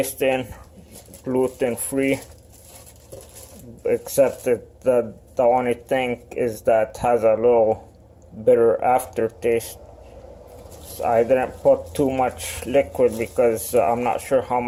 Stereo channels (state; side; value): identical; both; correlation 1.00